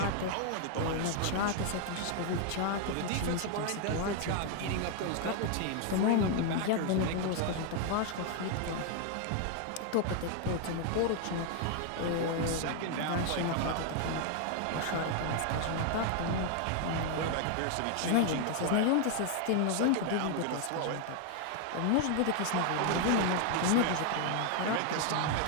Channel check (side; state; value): both; different; correlation 0.00